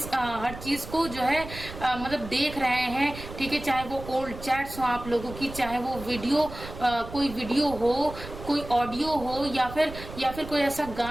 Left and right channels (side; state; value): right; noise; rumble, 12 dB below the sound